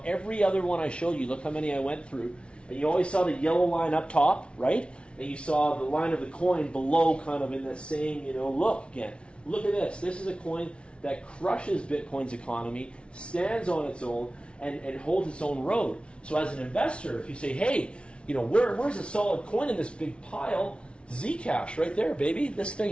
every other one I showed you. Look how many I went through. And you always saw the yellow line up top, right? And you saw the line of the coin below, kind of in the same, look again. Look at this. This is a coin that crushes Bitcoin's economy, stands on its own, and holds its own road. So as an investor, if you say, hey, where's a solid coin in this big pile? Zcash, right there, baby. This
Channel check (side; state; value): right; late; 0.059 ms